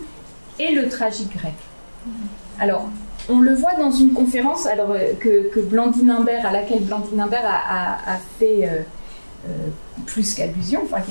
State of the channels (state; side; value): inverted; both; correlation -1.00